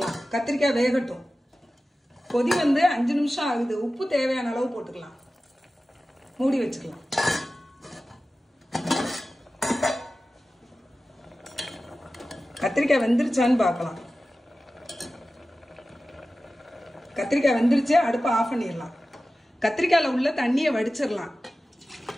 கத்திரிக்காய் வேகட்டும். கொதி வந்து 5 நிமிஷம் ஆகுது. உப்பு தேவையான அளவு போட்டுக்கலாம். மூடி வச்சுக்கலாம். கத்திரிக்காய் வெந்துருச்சான்னு பார்க்கலாம். கத்திரிக்காய் வெந்துருச்சு. அடுப்பை ஆஃப் பண்ணிடலாம். கத்திரிக்காயில உள்ள தண்ணியை வடிச்சிடலாம்.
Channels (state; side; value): normal; both; correlation 0.95